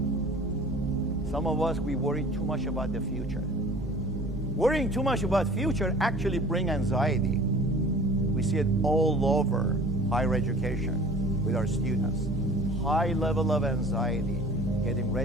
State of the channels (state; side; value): normal; both; correlation 0.45